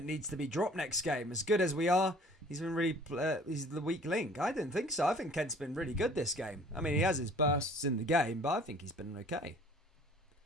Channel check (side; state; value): both; normal; correlation 0.51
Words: needs to be dropped next game. As good as we are, he's been really he's the weak link. I didn't think so. I think Kent's been really good this game. I mean, he has his bursts in the game, but I think he's been okay.